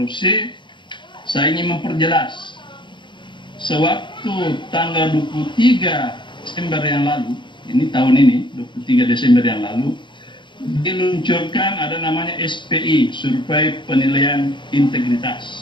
Saya ingin memperjelas, sewaktu tanggal 23 Desember yang lalu, ini tahun ini 23 Desember yang lalu, diluncurkan ada namanya SPI, Survei Penilaian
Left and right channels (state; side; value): late; right; 0.23 ms